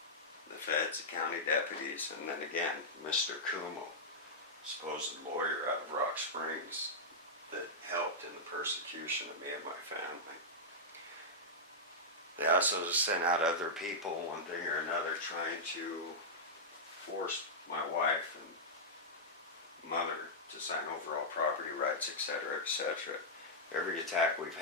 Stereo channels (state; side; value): normal; both; correlation -0.09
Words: The feds, the county deputies, and then again, Mr. Kumo, supposed lawyer out of Rock Springs that helped in the persecution of me and my family. They also sent out other people, one thing or another, trying to force my wife and mother to sign overall property rights, etc., etc. Every attack we've